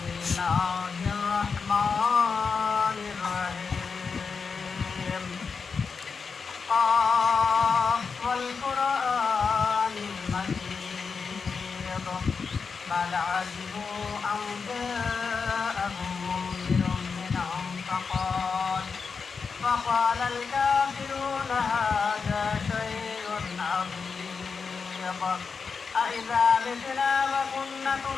بل عجبوا أن جاءهم منذر منهم فقال الكافرون هذا شيء عظيم أإذا متنا وكنا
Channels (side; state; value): right; quieter; 5.3 dB